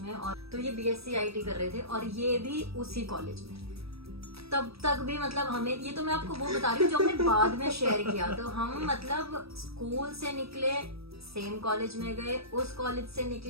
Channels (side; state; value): left; late; 0.77 ms